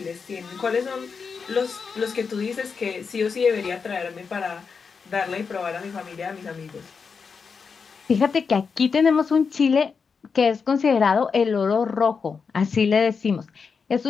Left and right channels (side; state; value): right; quieter; 5.5 dB